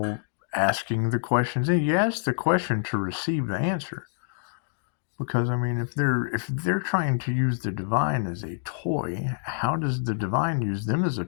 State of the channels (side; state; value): right; silent; digital silence